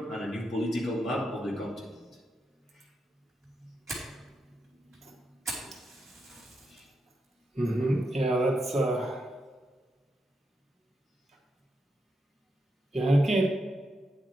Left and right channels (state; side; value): normal; both; correlation 0.84